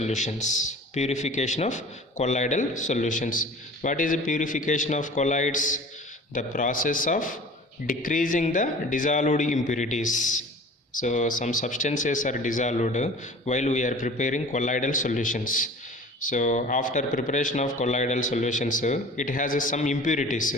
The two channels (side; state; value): both; normal; correlation 0.42